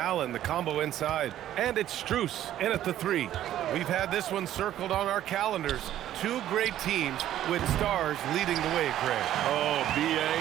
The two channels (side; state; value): left; quieter; 12.3 dB